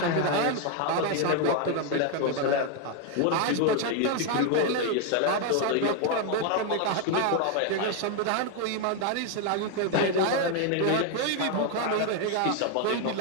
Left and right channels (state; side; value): different; both; correlation 0.01